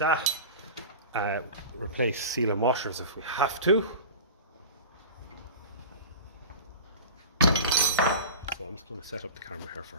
Replace seal and washers if we have to. So I'm just going to set up the camera here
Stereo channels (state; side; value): inverted; both; correlation -0.33